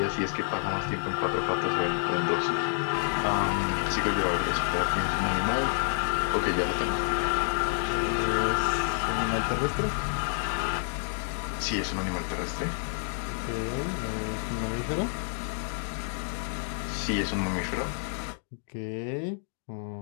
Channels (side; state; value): right; silent; digital silence